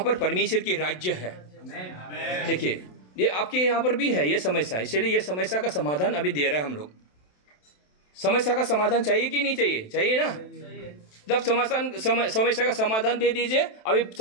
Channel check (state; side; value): late; right; 27 ms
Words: पर परमेश्वर की राज्य है। देखिए ये आपके यहाँ पर भी है ये समस्या, इसलिए ये समस्या का समाधान अभी दे रहे हैं हम लोग। समस्या का समाधान चाहिए कि नहीं चाहिए? चाहिए ना। जब समस्या का समाधान दे दीजिए, अभी